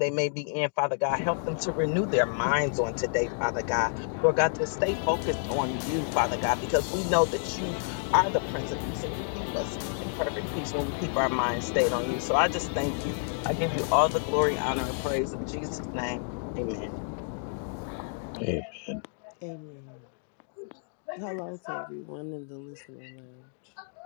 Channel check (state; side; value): silent; right; digital silence